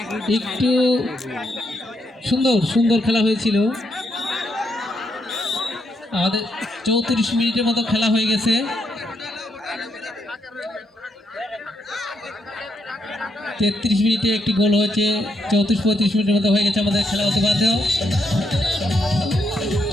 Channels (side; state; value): both; normal; correlation 0.77